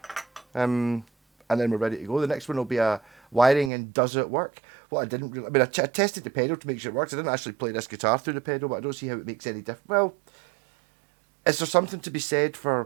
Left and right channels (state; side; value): drops out; left; at 3.7 s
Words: And then we're ready to go. The next one will be a wiring and does it work? What I didn't really, I mean, I tested the pedal to make sure it works. I didn't actually play this guitar through the pedal, but I don't see how it makes any difference. Well, is there something to be said